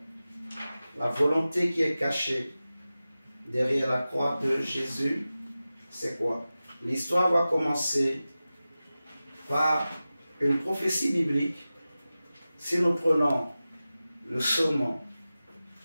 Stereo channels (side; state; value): both; inverted; correlation -0.95